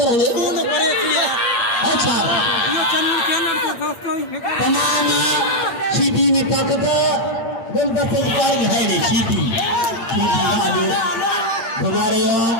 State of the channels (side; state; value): right; late; 8.7 ms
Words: ni. अच्छा तमाम सीधी में ताकत बोल बच्चे कारी है नहीं सीधी सीधी घुमा रहे हो